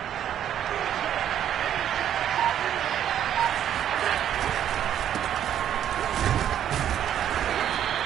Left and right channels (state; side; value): quieter; left; 10.3 dB